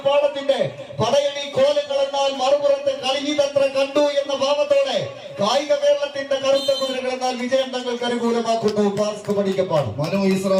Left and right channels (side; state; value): both; identical; correlation 1.00